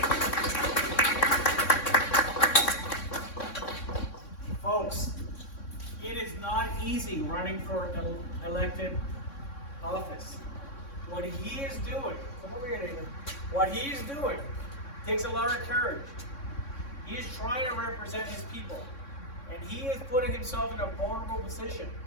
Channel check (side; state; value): right; late; 3.6 ms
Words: Folks, it is not easy running for elected office. What he is doing, come over here, David. What he is doing takes a lot of courage. He is trying to represent his people, and he is putting himself in a vulnerable position